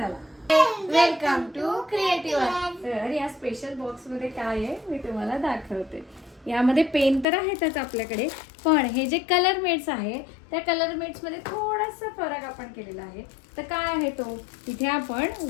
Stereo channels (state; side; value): drops out; right; at 7.2 s